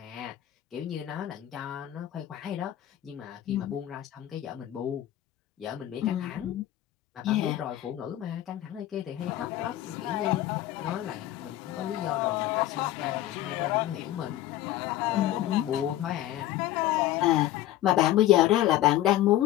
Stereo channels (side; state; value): right; quieter; 13.9 dB